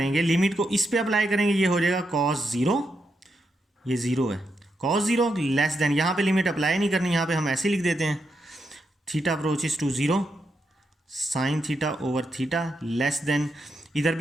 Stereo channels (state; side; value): normal; both; correlation 0.83